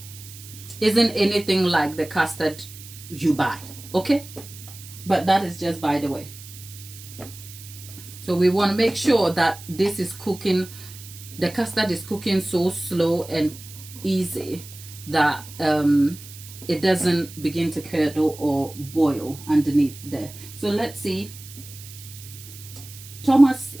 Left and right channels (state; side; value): noise; right; hiss, 16 dB below the sound